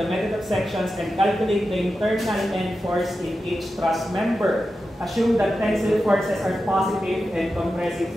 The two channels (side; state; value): both; normal; correlation 0.91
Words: method of sections and calculate the internal end force in each truss member. Assume that tensile forces are positive and compressive